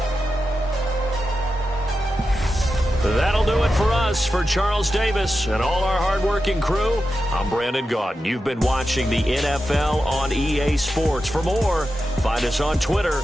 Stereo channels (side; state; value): both; normal; correlation 0.90